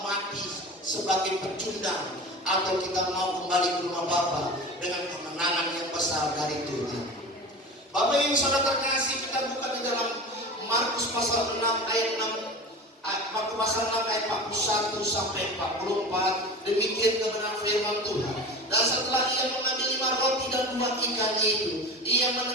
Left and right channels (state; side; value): normal; both; correlation 0.32